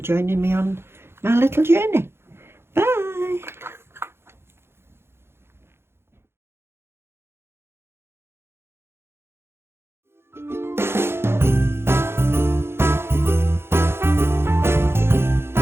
joining me on my little journey.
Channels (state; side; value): late; left; 0.12 ms